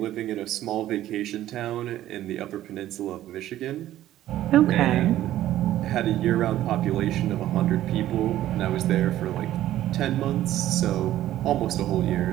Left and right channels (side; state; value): left; quieter; 13.4 dB